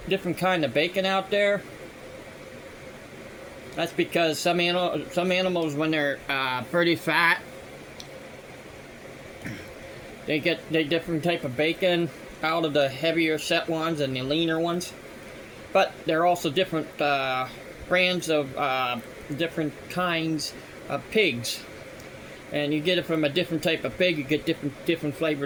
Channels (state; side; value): identical; both; correlation 1.00